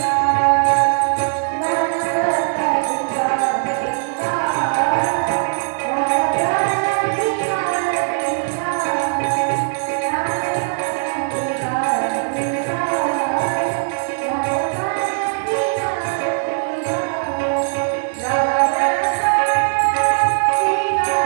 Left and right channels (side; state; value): left; silent; digital silence